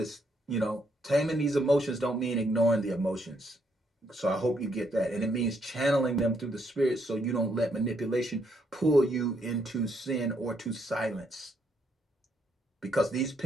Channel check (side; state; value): both; normal; correlation 0.74